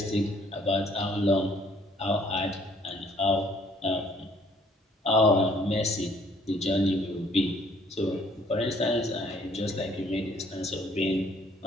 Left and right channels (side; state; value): both; normal; correlation 0.62